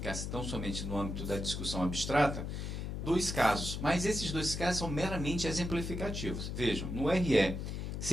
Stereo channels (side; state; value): left; noise; hum, 4 dB below the sound